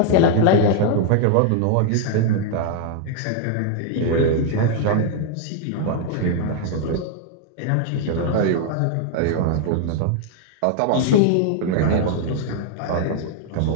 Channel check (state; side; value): different; both; correlation 0.00